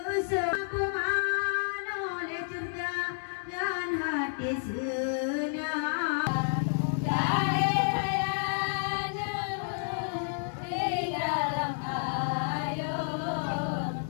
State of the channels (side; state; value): right; silent; digital silence